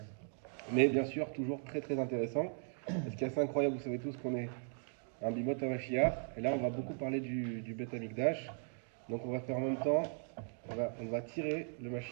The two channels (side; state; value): left; silent; 52 dB below the other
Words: Mais bien sûr, toujours très très intéressant. Et ce qui est assez incroyable, vous savez tous qu'on est un Bimot Mashiach. Et là, on va beaucoup parler du Beth Amikdash. Donc, on va faire en même temps, on va tirer le